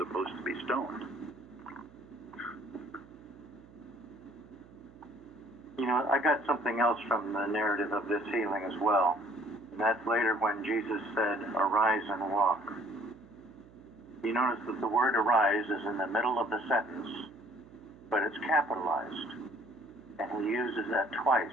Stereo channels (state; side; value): noise; right; hum, 23 dB below the sound